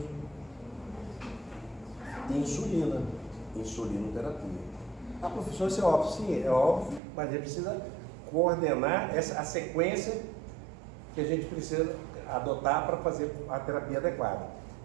Insulina. Insulinoterapia. Ah, professor, isso é óbvio. Sim, é óbvio, mas a gente precisa coordenar a sequência que a gente precisa adotar para fazer a terapia adequada.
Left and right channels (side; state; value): left; drops out; at 7.0 s